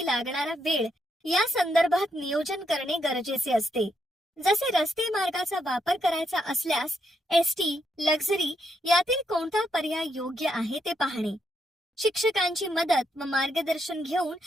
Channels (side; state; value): both; normal; correlation 0.79